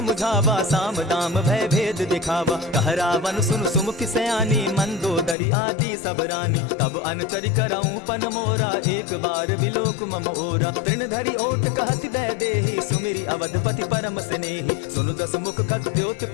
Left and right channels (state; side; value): drops out; right; at 5.4 s